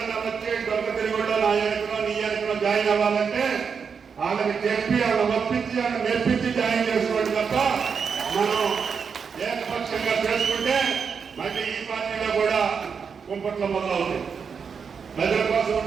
వచ్చి దొంగ తిరుగుళ్ళో నా ఎన్నికలో నీ ఎన్నికలో జాయిన్ అవ్వాలంటే వాళ్ళకి చెప్పి వాళ్ళని ఒప్పించి వాళ్ళని మెప్పించి జాయిన్ చేసుకోండి తప్ప మనం ఏకపక్షంగా చేసుకుంటే మళ్ళీ ఈ పార్టీలో కూడా కుంపట్ల మొదలవుతుంది. ప్రజల కోసం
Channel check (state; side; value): quieter; left; 6.2 dB